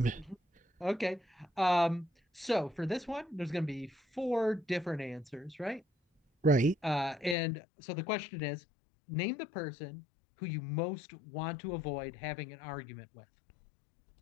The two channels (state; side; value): drops out; right; at 7.4 s